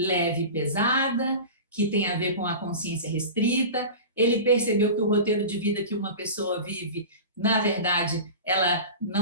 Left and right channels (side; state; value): both; inverted; correlation -0.31